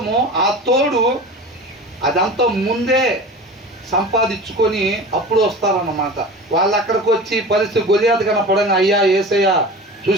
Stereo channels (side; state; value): both; normal; correlation 0.35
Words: ఆ తోడు, అదంతా ముందే సంపాదించుకొని అప్పుడు వస్తారన్నమాట. వాళ్ళు అక్కడికి వచ్చి పరిస్థితి గొలియాతు కనపడంగా, అయ్యా ఏసయ్యా